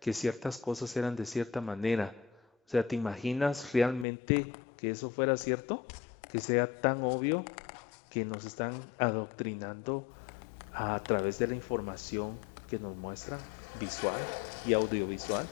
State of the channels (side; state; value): right; drops out; at 4.0 s